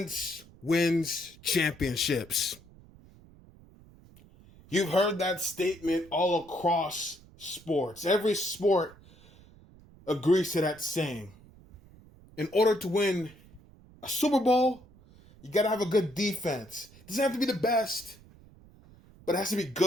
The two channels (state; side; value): noise; right; rumble, 24 dB below the sound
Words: wins championships. You've heard that statement all across sports. Every sport agrees to that saying. In order to win a Super Bowl, you got to have a good defense. It doesn't have to be the best, but it has to be